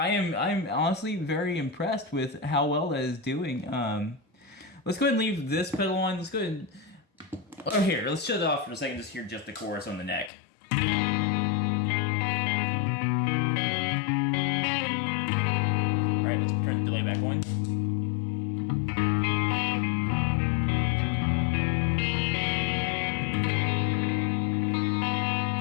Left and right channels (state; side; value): drops out; right; at 10.3 s